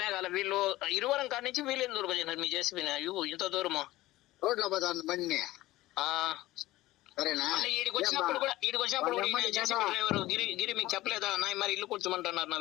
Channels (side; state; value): right; quieter; 17.3 dB